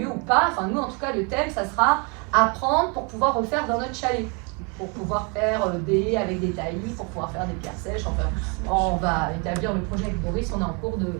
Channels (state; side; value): quieter; left; 33.3 dB